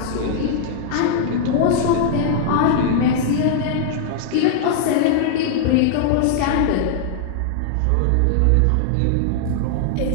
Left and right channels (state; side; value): different; both; correlation -0.01